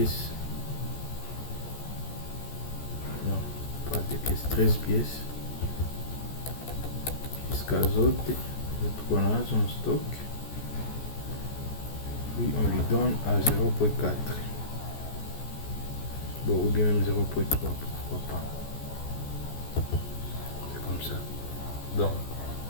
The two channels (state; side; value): late; right; 14 ms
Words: Non, pas des pièces, 13 pièces. Jusqu'à autres qu'on a en stock. Puis on lui donne à 0.4. Bon, ou bien même 0.3, pourquoi pas. C'est comme ça. Donc,